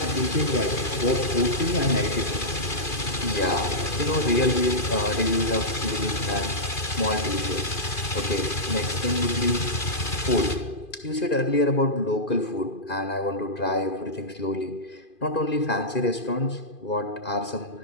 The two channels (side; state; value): right; late; 2.5 ms